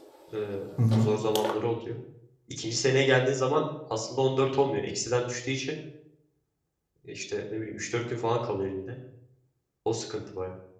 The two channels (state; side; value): identical; both; correlation 1.00